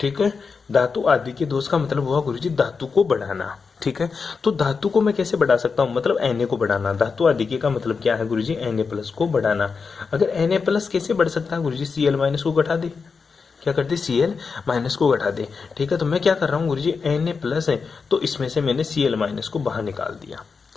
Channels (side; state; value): right; quieter; 5.1 dB